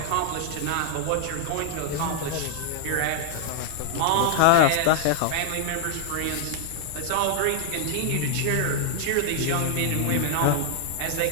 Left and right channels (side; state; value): both; different; correlation 0.00